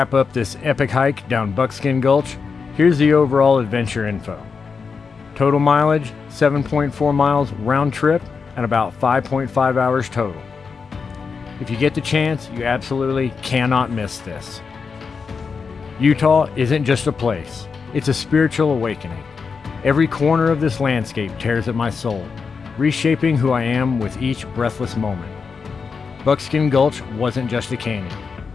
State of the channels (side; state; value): right; quieter; 5.3 dB